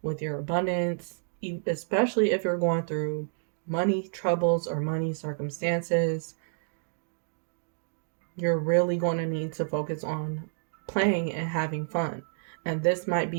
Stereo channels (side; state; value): left; silent; digital silence